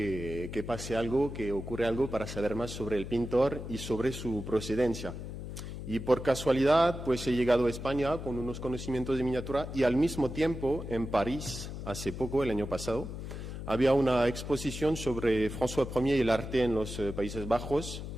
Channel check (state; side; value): noise; left; hum, 8 dB below the sound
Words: pase algo, que ocurra algo para saber más sobre el pintor y sobre su procedencia. Y por casualidad, pues he llegado a España con unos conocimientos de miniatura y al mismo tiempo en París, hace poco, el año pasado, había una exposición sobre François I y el arte en los Países Bajos